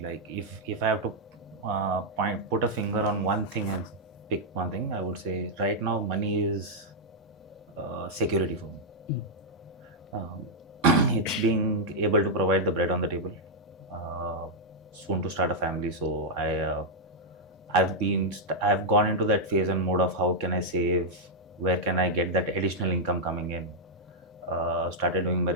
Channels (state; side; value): normal; both; correlation -0.04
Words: like if I have to put a finger on one thing and pick one thing, I would say right now money is security for me. It's being able to provide the bread on the table. Soon to start a family, so I've gone into that phase and mode of how can I save, where can I get that additional income coming in. Started doing my